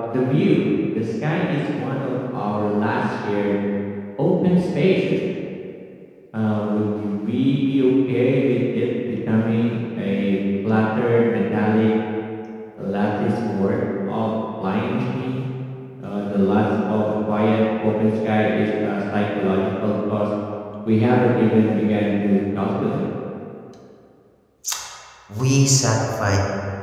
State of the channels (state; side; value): identical; both; correlation 1.00